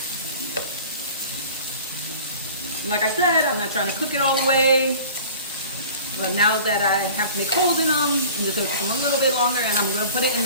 Like I said, I'm not trying to cook it all the way. But now that I have to make holes in them, I'm just gonna cook them a little bit longer, and I'm gonna put it in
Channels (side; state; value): both; inverted; correlation -0.43